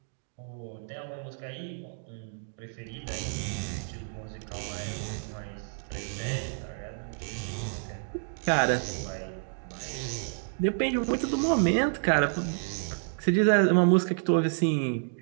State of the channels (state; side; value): silent; left; digital silence